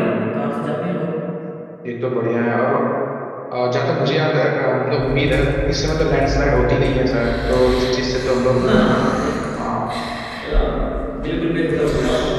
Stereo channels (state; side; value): identical; both; correlation 1.00